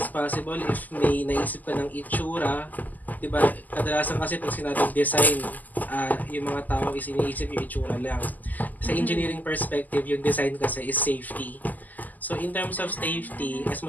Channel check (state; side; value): late; right; 0.082 ms